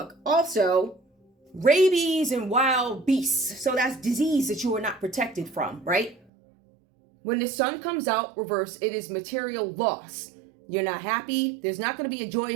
Also, rabies and wild beasts. So that's disease that you are not protected from, right? When the sun comes out reverse, it is material loss. You're not happy. There's not going to be a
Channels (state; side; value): drops out; left; at 6.2 s